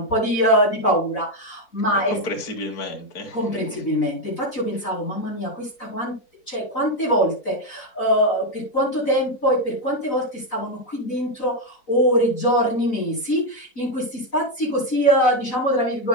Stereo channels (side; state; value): right; late; 4.0 ms